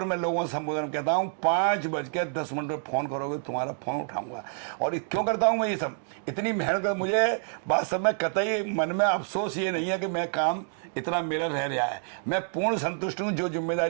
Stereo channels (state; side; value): silent; left; digital silence